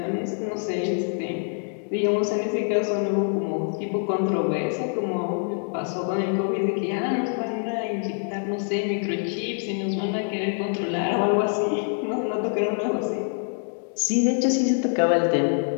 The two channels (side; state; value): right; silent; 58 dB below the other